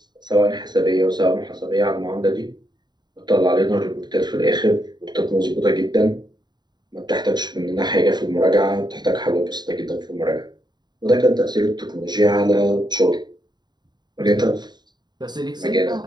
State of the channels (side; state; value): left; late; 0.21 ms